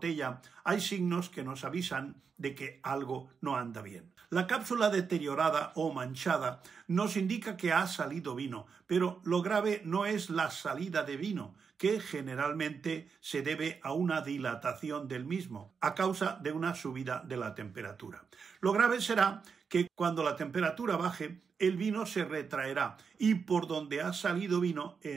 hay signos que nos avisan de que algo no anda bien. La cápsula deteriorada o manchada nos indica que ha salido vino, pero lo grave no es la salida de vino, que generalmente se debe a una dilatación del mismo, a causa de una subida de la temperatura. Lo grave será que cuando la temperatura baje, el vino se retraerá y por donde ha salido vino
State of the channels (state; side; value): quieter; left; 5.9 dB